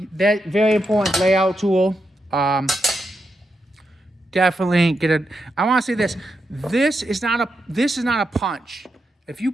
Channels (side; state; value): both; normal; correlation 0.85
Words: that very important layout tool. Definitely get it. I want to say this. This is not a punch. If you